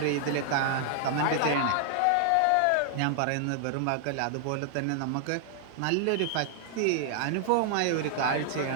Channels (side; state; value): both; different; correlation 0.00